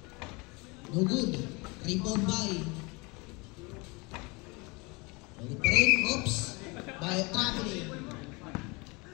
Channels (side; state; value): right; quieter; 27.1 dB